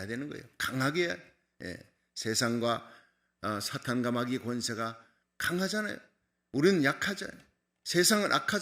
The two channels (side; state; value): both; identical; correlation 1.00